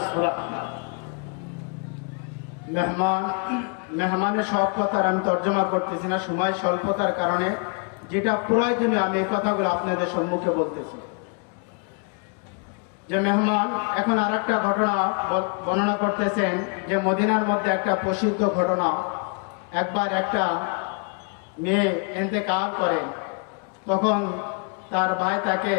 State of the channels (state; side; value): quieter; right; 37.5 dB